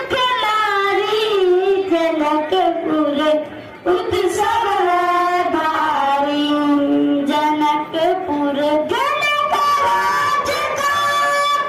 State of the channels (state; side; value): identical; both; correlation 1.00